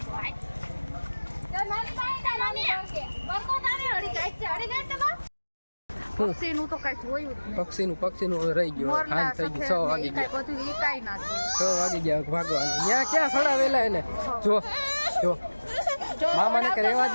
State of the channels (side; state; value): both; inverted; correlation -1.00